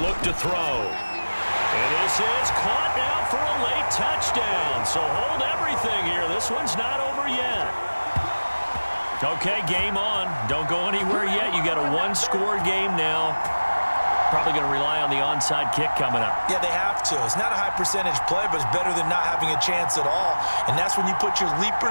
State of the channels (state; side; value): inverted; both; correlation -1.00